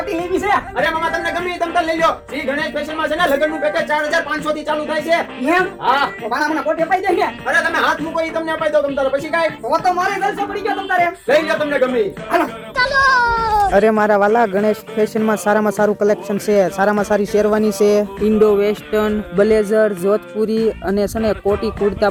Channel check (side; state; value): both; identical; correlation 1.00